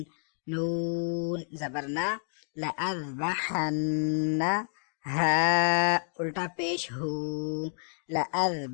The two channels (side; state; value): right; silent; 58 dB below the other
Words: نون زبرنا لأذبحن ہا الٹا پیش ہو